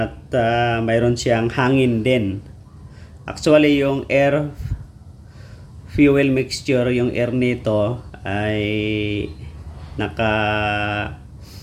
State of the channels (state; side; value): identical; both; correlation 1.00